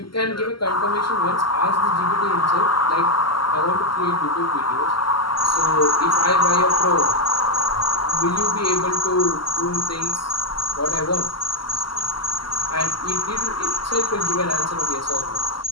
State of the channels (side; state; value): right; late; 0.73 ms